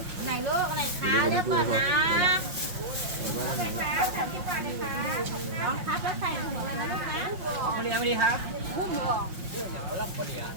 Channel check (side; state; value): left; late; 5.6 ms